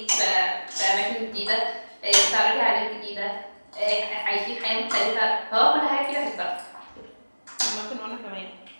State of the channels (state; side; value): inverted; both; correlation -1.00